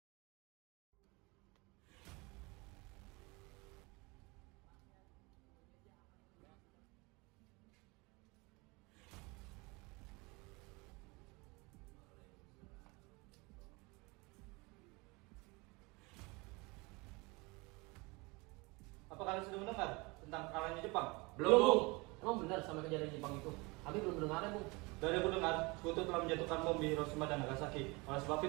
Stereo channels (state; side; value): quieter; left; 26.0 dB